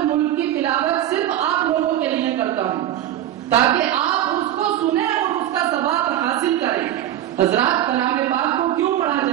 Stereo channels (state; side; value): quieter; left; 12.4 dB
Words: ملک کی تلاوت صرف آپ لوگوں کے لیے کرتا ہوں تاکہ آپ اس کو سنیں اور اس کا ثواب حاصل کریں. حضرات کلام پاک کو کیوں پڑھا